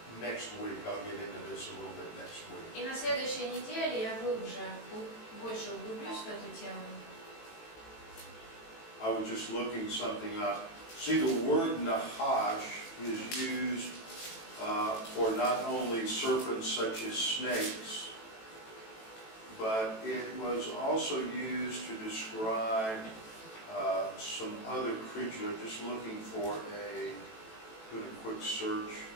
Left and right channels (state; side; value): late; right; 18 ms